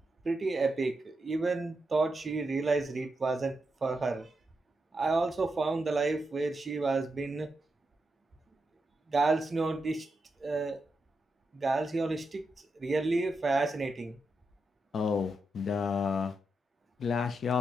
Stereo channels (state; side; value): normal; both; correlation 0.86